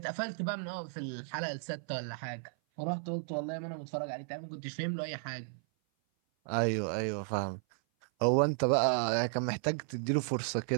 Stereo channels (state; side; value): silent; left; 55 dB below the other